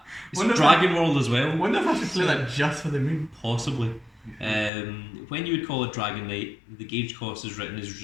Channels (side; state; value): right; drops out; at 4.7 s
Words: It's Wonder if Dragon World as well. I wonder if I should play that just for the meme. Possibly. When you would call a Dragon Knight, the gauge cost is written as